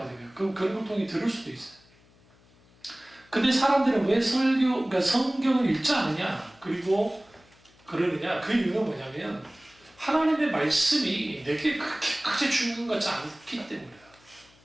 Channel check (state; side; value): noise; left; hum, 29 dB below the sound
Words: 그런 걸 통해 들을 수도 있어요. 근데 사람들은 왜 그러니까 성경을 읽지 않느냐, 그리고 그러느냐? 그 이유는 뭐냐면 하나님의 말씀이 내게 그렇게 중요한 것 같지 않기 때문이에요.